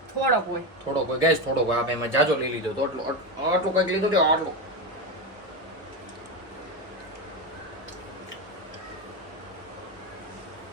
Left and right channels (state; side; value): normal; both; correlation 0.16